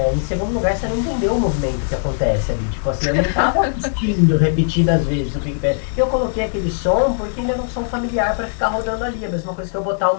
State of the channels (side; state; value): right; silent; digital silence